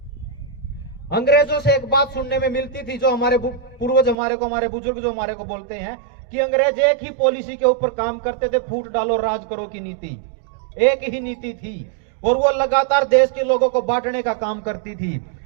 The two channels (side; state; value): left; drops out; at 4.2 s